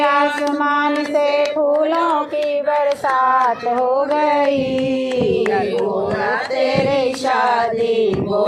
से फूलों की बरसात हो गई। गोरा तेरी शादी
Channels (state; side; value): identical; both; correlation 1.00